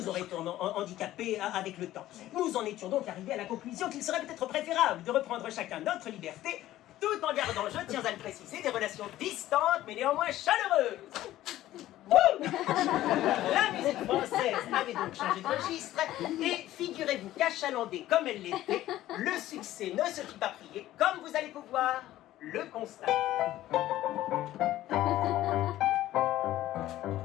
aurait handicapés avec le temps. Nous en étions donc arrivés à la conclusion qu'il serait peut-être préférable de reprendre chacun notre liberté, tout en gardant, je tiens à le préciser, des relations distantes mais néanmoins chaleureuses. Wouh! La musique française avait donc changé de registre et figurez-vous qu'achalandée comme elle l'était, le succès ne se fit pas prier, comme vous allez pouvoir le constater.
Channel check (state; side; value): quieter; right; 14.4 dB